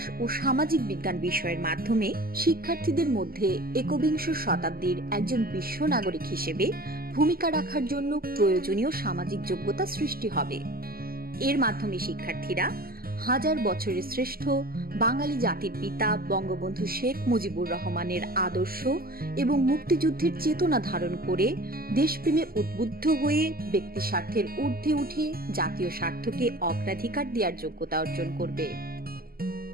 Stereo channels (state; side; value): late; left; 0.43 ms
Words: ও সামাজিক বিজ্ঞান বিষয়ের মাধ্যমে শিক্ষার্থীদের মধ্যে একবিংশ শতাব্দীর একজন বিশ্ব নাগরিক হিসেবে ভূমিকা রাখার জন্য প্রয়োজনীয় সামাজিক যোগ্যতা সৃষ্টি হবে। এর মাধ্যমে শিক্ষার্থীরা হাজার বছরের শ্রেষ্ঠ বাঙালি জাতির পিতা বঙ্গবন্ধু শেখ মুজিবুর রহমানের আদর্শ এবং মুক্তিযুদ্ধের চেতনা ধারণ করে দেশপ্রেমে উদ্বুদ্ধ হয়ে ব্যক্তি স্বার্থের ঊর্ধ্বে উঠে জাতীয় স্বার্থকে অগ্রাধিকার দেওয়ার যোগ্যতা অর্জন করবে।